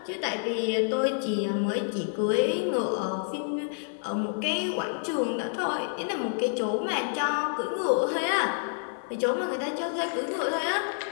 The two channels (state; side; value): silent; right; digital silence